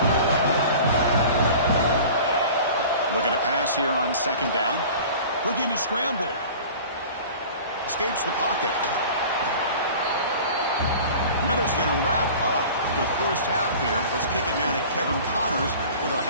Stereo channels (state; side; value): inverted; both; correlation -0.41